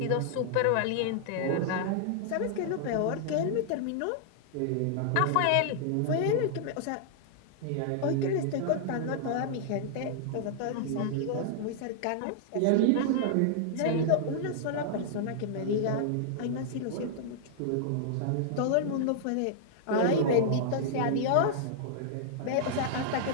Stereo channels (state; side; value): different; both; correlation -0.01